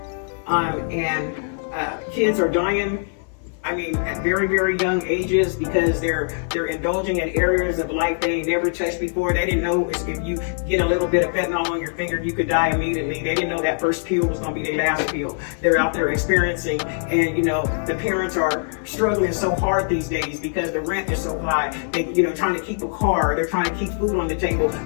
Kids are dying, I mean, at very, very young ages because they're indulging in areas of life they never touched before. They didn't know if you get a little bit of fentanyl on your finger, you could die immediately. They didn't know that first pill was going to be their last pill. They're out there experiencing, and, you know, the parents are struggling so hard these days because the rent is so high. They, you know, trying to keep a car, they're trying to keep food on the table,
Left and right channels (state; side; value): silent; right; 58 dB below the other